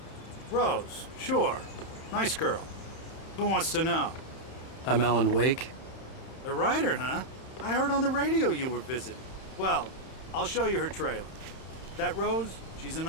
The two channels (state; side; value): late; right; 31 ms